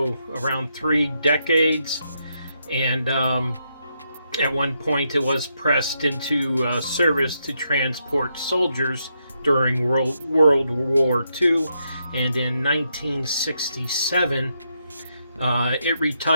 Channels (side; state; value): both; inverted; correlation -0.80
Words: 3 decades. And at one point it was pressed into service to transport soldiers during World War II. And in 1967, it